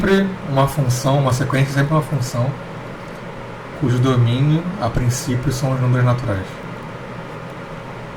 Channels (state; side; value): identical; both; correlation 1.00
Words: uma função, uma sequência é sempre uma função cujo domínio, a princípio, são os números naturais.